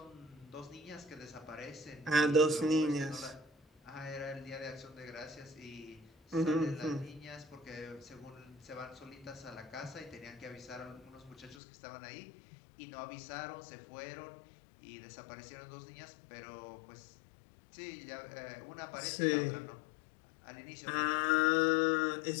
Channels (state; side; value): drops out; right; at 11.6 s